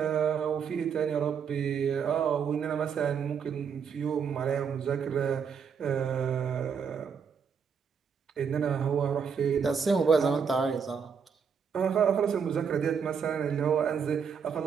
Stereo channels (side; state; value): left; quieter; 6.7 dB